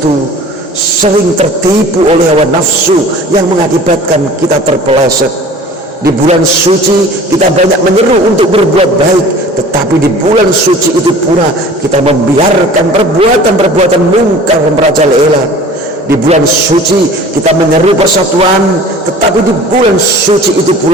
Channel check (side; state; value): both; normal; correlation 0.45